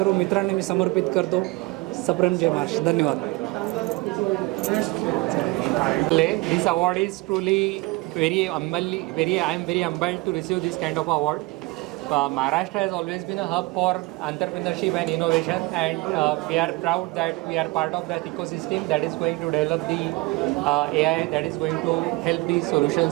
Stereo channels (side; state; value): left; quieter; 23.8 dB